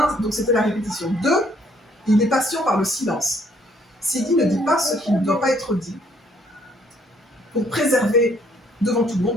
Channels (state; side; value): normal; both; correlation 0.65